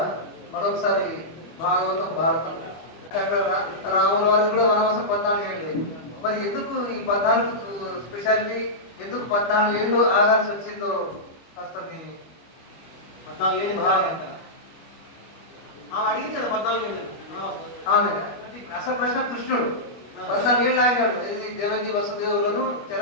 మరొకసారి భాగవతం భారతం రాముల వారికి కూడా వనవాసం 14 ఏళ్ళు. మరి ఎందుకు ఈ 14 స్పెషాలిటీ, ఎందుకు 14 ఏళ్ళు ఆగాల్సి వచ్చిందో కాస్త మీ 14 ఏళ్ళు ఆమె అడిగింది కదా 14 ఏళ్ళు ఆమె అసలు ప్రశ్న కృష్ణుడు 14 ఏళ్ళు ఆగాడు ఇది దేవకి వసుదేవులను చెర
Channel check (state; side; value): late; right; 25 ms